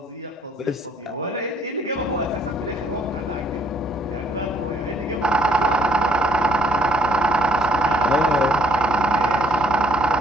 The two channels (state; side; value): normal; both; correlation 0.64